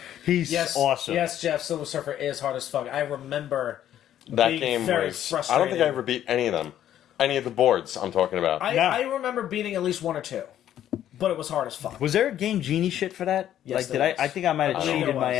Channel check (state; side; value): quieter; right; 11.3 dB